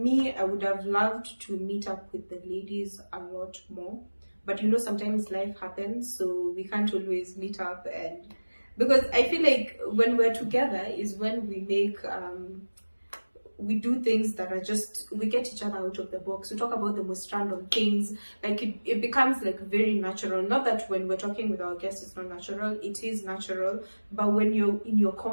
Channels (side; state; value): both; inverted; correlation -1.00